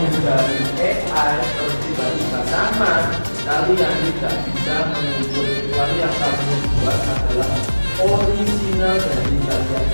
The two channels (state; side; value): inverted; both; correlation -1.00